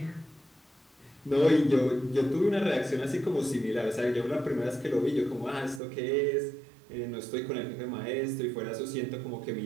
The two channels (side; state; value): left; drops out; at 5.8 s